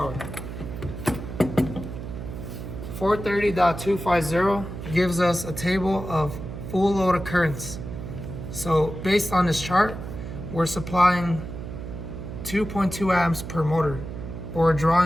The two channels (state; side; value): noise; right; hum, 8 dB below the sound